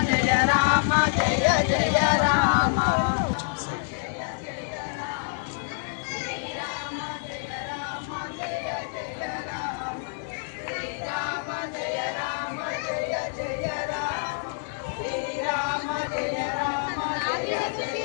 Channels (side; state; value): right; silent; digital silence